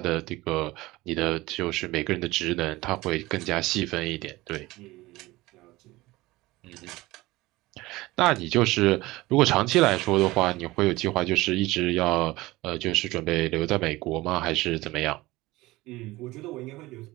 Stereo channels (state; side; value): quieter; left; 19.6 dB